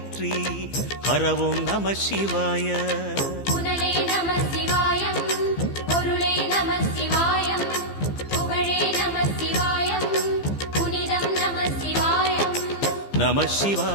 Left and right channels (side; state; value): right; late; 15 ms